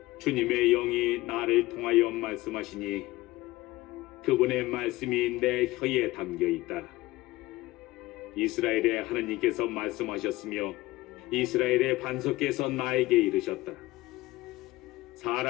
주님의 영이 나를 통하여 말씀하시니 그분의 말씀이 내 혀에 담겨 있다. 이스라엘의 하느님께서 말씀하셨으며 이스라엘의 반석께서 나에게 이르셨다.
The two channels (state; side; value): quieter; right; 18.8 dB